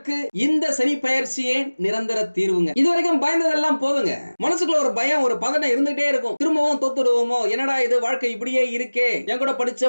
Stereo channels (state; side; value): inverted; both; correlation -1.00